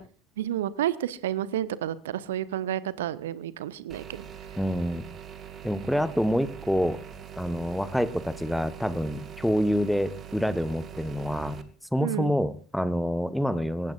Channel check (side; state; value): both; normal; correlation 0.71